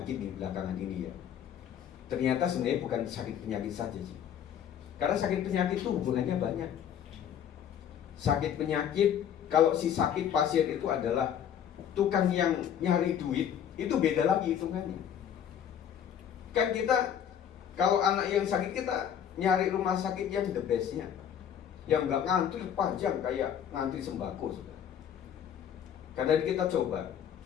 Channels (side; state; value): right; quieter; 9.1 dB